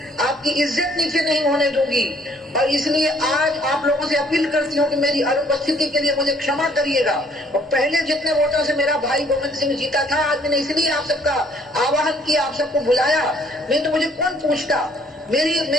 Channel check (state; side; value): normal; both; correlation 0.62